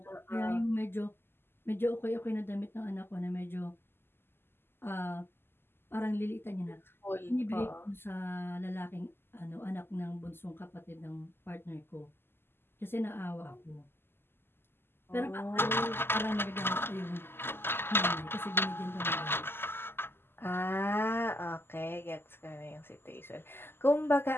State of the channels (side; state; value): right; late; 0.11 ms